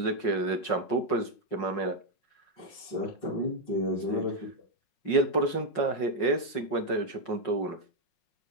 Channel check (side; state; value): right; late; 5.5 ms